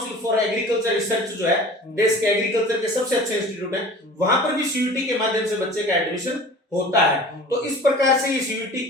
for agriculture research जो है, देश के एग्रीकल्चर के सबसे अच्छे इंस्टीट्यूट है, वहां पर भी सीयूटी के माध्यम से बच्चे का एडमिशन होता है। तो इस प्रकार से ये सीयूटी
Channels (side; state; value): both; normal; correlation 0.42